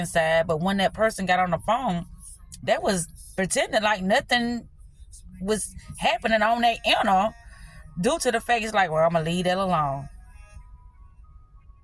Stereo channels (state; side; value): identical; both; correlation 1.00